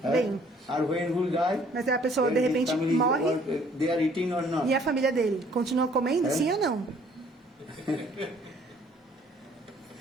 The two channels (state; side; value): normal; both; correlation 0.59